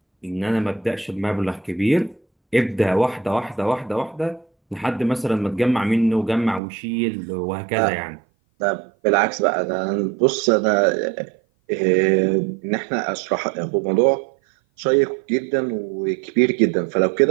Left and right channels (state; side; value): drops out; left; at 6.6 s